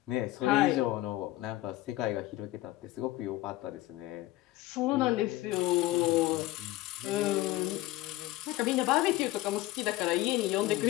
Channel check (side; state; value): right; quieter; 17.3 dB